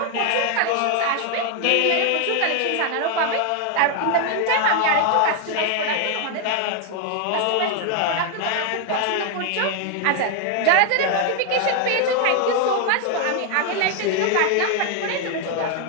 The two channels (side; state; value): both; different; correlation 0.01